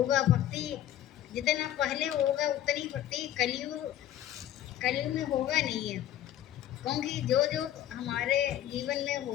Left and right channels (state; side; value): quieter; right; 12.1 dB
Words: भक्ति जितना पहले होगा उतनी भक्ति कलयुग में होगा नहीं है। क्योंकि जो जो हमारे जीवन में